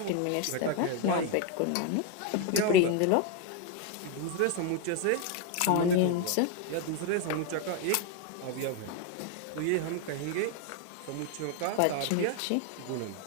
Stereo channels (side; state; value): both; different; correlation 0.01